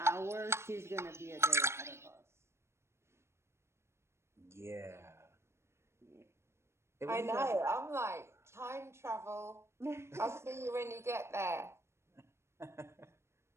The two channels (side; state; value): left; late; 0.13 ms